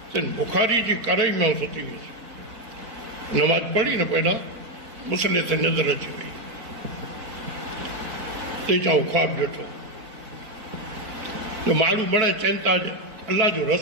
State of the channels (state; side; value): late; left; 4.0 ms